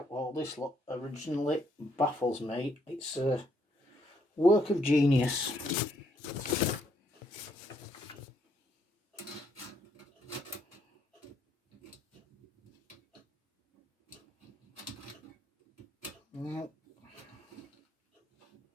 all this lot originally baffles me. It's a work of genius. No,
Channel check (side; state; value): both; normal; correlation 0.72